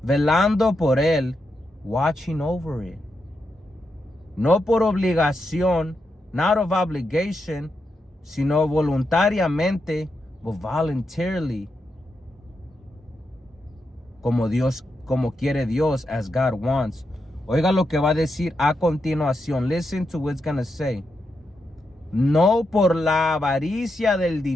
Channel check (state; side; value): normal; both; correlation 0.85